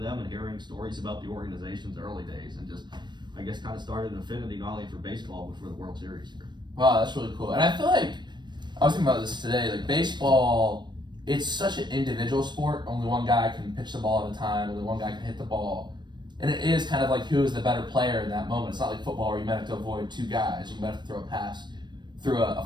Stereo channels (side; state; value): left; late; 0.22 ms